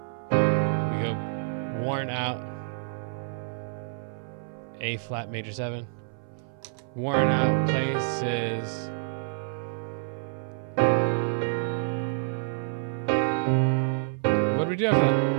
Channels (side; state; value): left; silent; 58 dB below the other